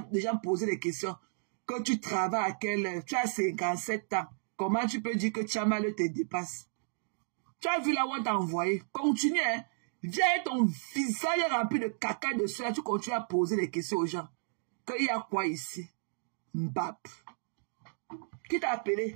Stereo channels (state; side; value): silent; left; digital silence